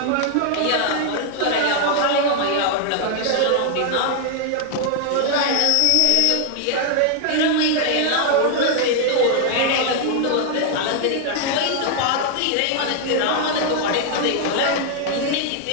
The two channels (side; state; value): both; different; correlation 0.00